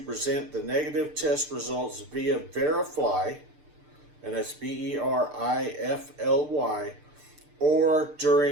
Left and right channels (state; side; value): late; left; 6.7 ms